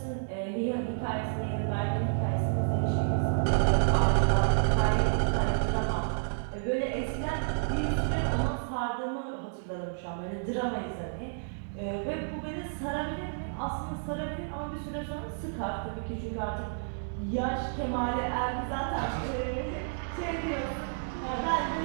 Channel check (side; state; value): left; silent; digital silence